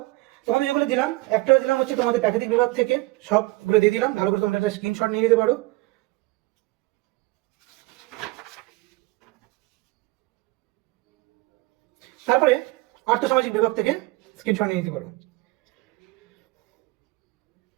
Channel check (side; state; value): left; quieter; 21.8 dB